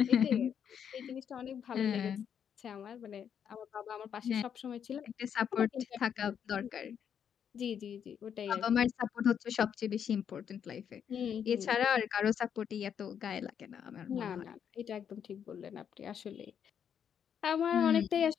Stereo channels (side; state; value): right; quieter; 8.2 dB